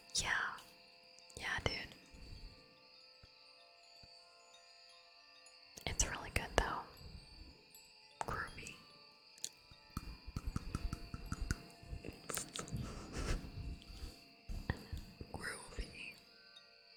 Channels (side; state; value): both; identical; correlation 1.00